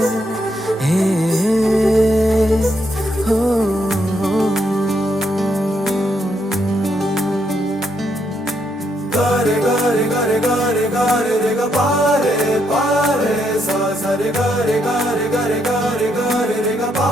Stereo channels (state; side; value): normal; both; correlation 0.76